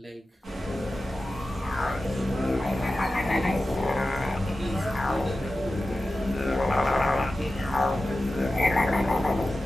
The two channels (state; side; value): normal; both; correlation 0.94